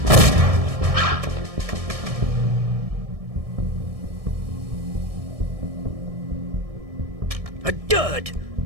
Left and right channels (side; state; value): left; late; 1.7 ms